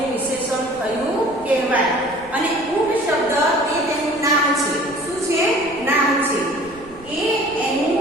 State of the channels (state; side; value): noise; right; rumble, 22 dB below the sound